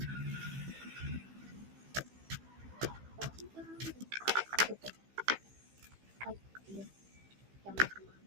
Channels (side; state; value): left; late; 15 ms